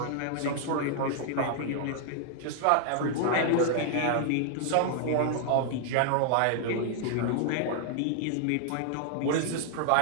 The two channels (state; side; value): different; both; correlation 0.00